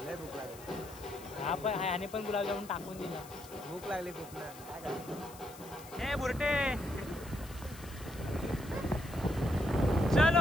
लय भूक लागली. हा पण ह्याने पण गुलाबजामुन टाकून दिला. भूक लागली खूप ना. काय करायचं. हे बुरटे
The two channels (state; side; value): noise; left; hiss, 18 dB below the sound